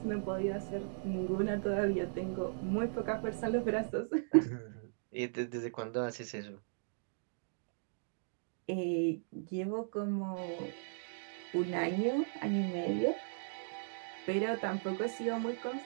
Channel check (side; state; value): left; silent; digital silence